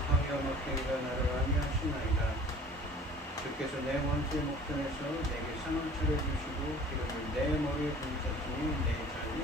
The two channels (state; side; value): normal; both; correlation 0.47